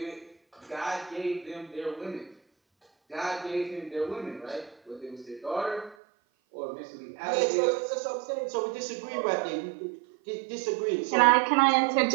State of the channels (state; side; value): drops out; left; at 6.0 s